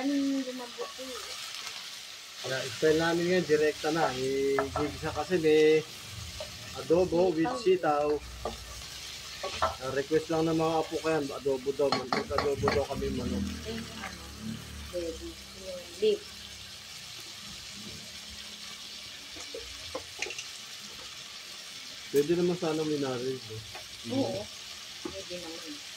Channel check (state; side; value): identical; both; correlation 1.00